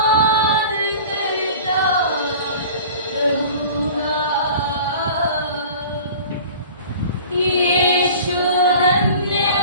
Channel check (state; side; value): inverted; both; correlation -0.42